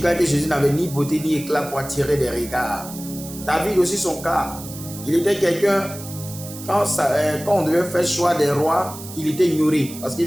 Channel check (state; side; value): noise; right; hiss, 14 dB below the sound